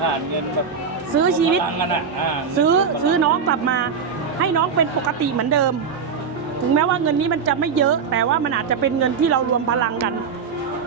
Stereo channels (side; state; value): left; quieter; 6.1 dB